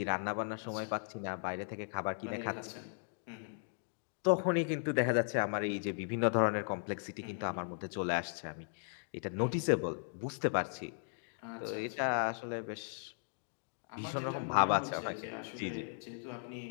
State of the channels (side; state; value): right; silent; digital silence